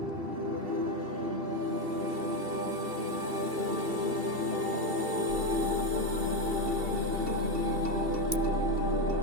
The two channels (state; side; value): late; left; 2.7 ms